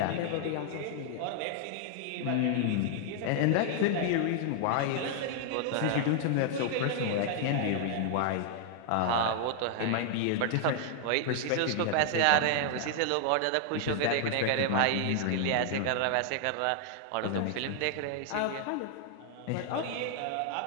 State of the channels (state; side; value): different; both; correlation -0.01